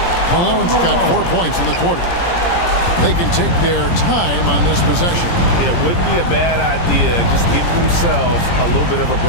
Malone's got 4 points in the quarter. They can take their time on this possession. It wouldn't be a bad idea. Just give themselves a little bit of a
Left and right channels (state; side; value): late; right; 17 ms